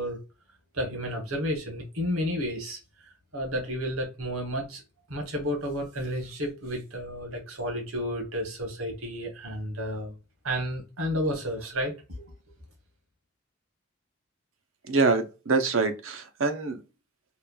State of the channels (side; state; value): both; normal; correlation 0.12